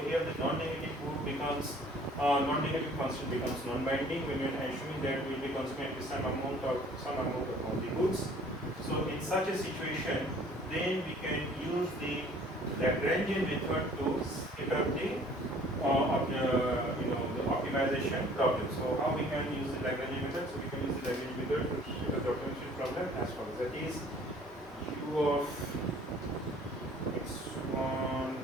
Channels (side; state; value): both; normal; correlation 0.53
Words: the non-negative good becomes non-negative constant becomes non-binding when we are assuming that we will be consuming at least some amount of all the goods. So in such a situation, then we can use the Lagrangian method to set up the the optimization problem. So how we can use the Lagrangian method? So we can use the Lagrangian method to set up the optimization problem as follows. That is u of x1